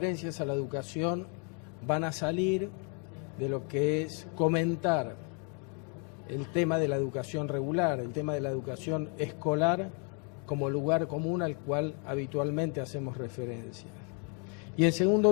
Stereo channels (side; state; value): right; quieter; 36.3 dB